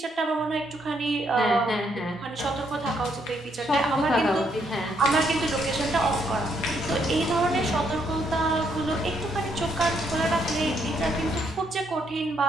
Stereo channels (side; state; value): both; normal; correlation 0.73